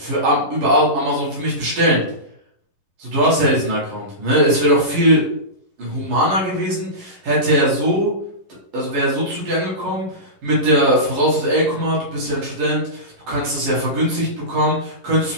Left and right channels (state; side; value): late; left; 11 ms